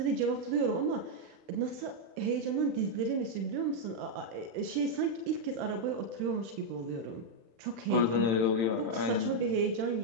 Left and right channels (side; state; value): left; late; 35 ms